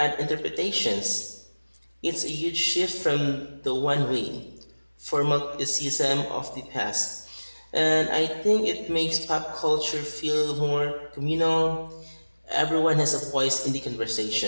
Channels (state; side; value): inverted; both; correlation -1.00